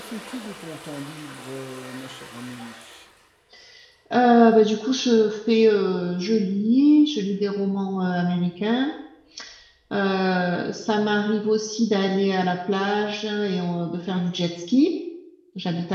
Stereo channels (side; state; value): both; identical; correlation 1.00